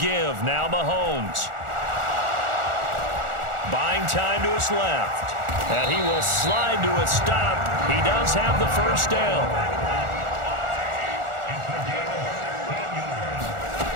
Now Mahomes. Buying time to his left. And he will slide to a stop. He does have the first down.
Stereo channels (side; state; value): left; late; 1.4 ms